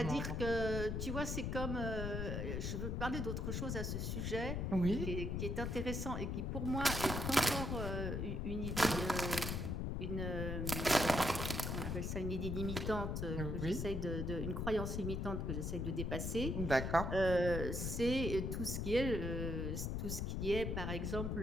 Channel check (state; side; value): noise; left; rumble, 1 dB below the sound